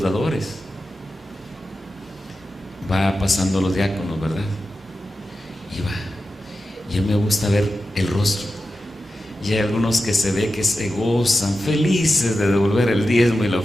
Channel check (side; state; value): both; normal; correlation 0.92